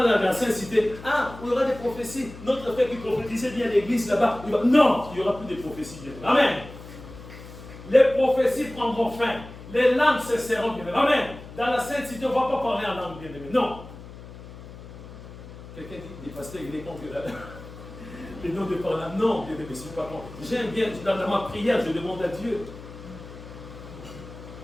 dans la Sainte Cité. Ah, il y aura des prophéties. Notre frère qui prophétisait bien l'église là-bas. Non, il n'y aura plus de prophéties, bien aimé. Amen. Les prophéties prendront fin. Les langues cesseront, bien aimé. Amen. Dans la Sainte Cité, on ne va pas parler en langue, bien aimé. Non. Quelqu'un dit, des pasteurs, il est contre les noms de parler. Non, bien aimé, je ne suis pas contre. J'aime bien, dans ma prière, je demande à Dieu.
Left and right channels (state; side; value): noise; left; hum, 15 dB below the sound